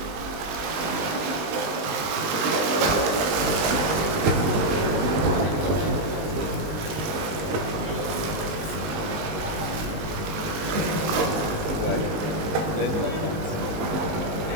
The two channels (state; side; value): late; left; 19 ms